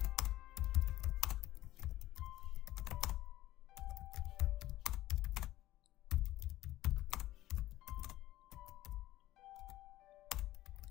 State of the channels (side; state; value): right; quieter; 15.4 dB